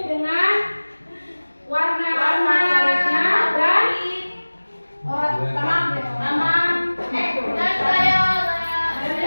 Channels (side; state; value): both; inverted; correlation -1.00